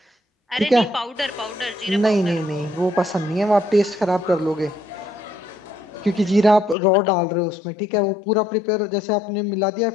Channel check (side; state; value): right; drops out; at 6.8 s